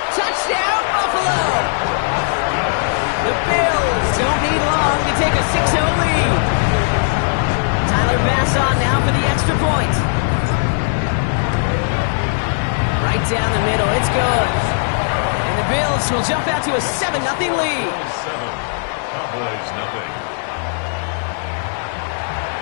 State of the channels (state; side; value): silent; right; 61 dB below the other